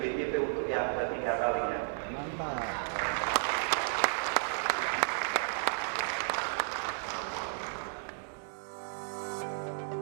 untuk yang ketiga kalinya.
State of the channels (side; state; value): left; silent; digital silence